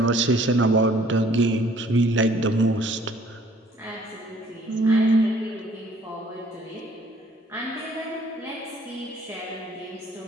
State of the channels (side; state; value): both; normal; correlation 0.58